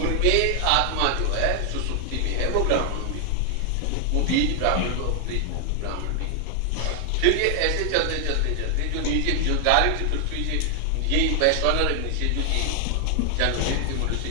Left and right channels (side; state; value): both; different; correlation 0.00